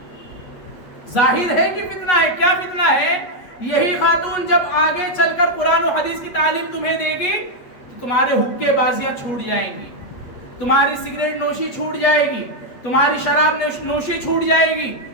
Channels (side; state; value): right; late; 8.3 ms